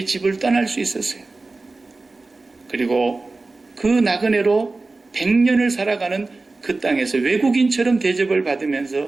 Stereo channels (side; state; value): left; quieter; 3.5 dB